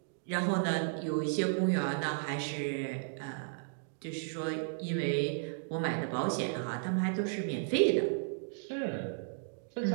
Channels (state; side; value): silent; left; digital silence